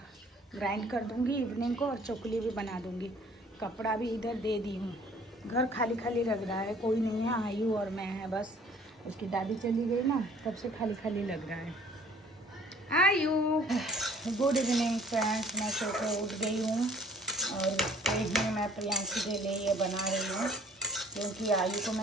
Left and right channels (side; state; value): both; normal; correlation 0.54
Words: ग्राइंड कर दूंगी इवनिंग को, और चोखली भी बना दूंगी। कपड़ा भी इधर दे दी हूँ। घर खाली खाली लग रहा है, कोई नहीं है, आयु और मैं है बस। उसकी दादी चली गई ना, तब से खाली खाली लग रहा है। आयु, गुड इवनिंग फ्रेंड्स। मैं सो के उठ गई हूँ और ही मैं प्रियांशी के लिए ये बना रही हूँ, क्योंकि आयु को